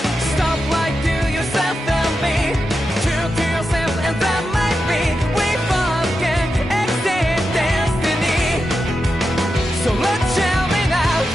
Stop lying to yourself and be true to yourself, and that might be we both can exceed destiny. So let's tell me now.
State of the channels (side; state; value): both; normal; correlation 0.89